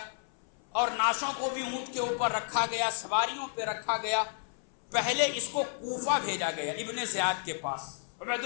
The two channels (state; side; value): silent; right; 57 dB below the other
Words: اور نعشوں کو بھی اونٹ کے اوپر رکھا گیا، سواریوں پہ رکھا گیا۔ پہلے اس کو کوفہ بھیجا گیا، ابن زیاد کے پاس، عبید